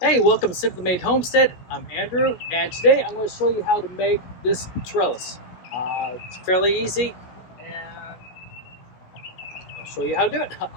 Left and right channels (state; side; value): late; right; 16 ms